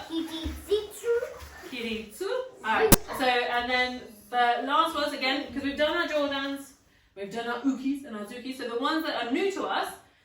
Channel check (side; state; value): both; identical; correlation 1.00